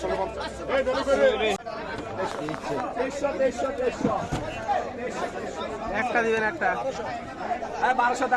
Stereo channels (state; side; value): identical; both; correlation 1.00